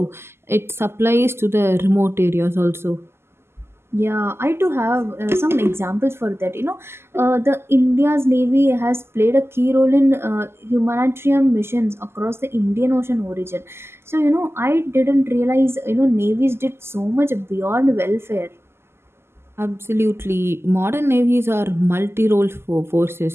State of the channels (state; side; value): late; left; 0.12 ms